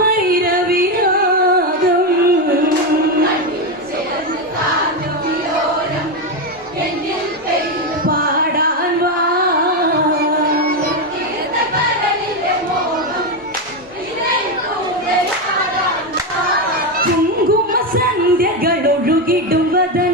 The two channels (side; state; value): both; normal; correlation 0.09